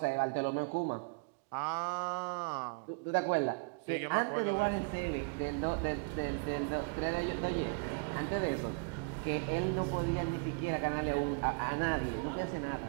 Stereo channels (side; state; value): left; quieter; 32.5 dB